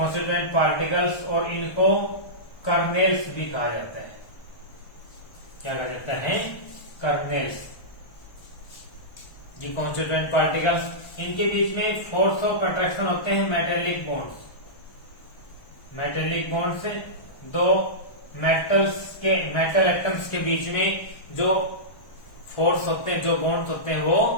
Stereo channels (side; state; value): right; late; 1.1 ms